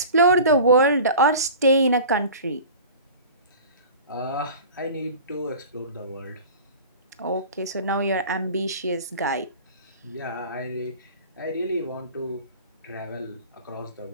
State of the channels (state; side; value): inverted; both; correlation -0.39